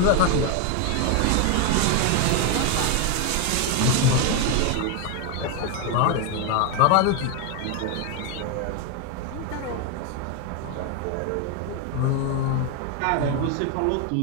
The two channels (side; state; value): both; different; correlation 0.01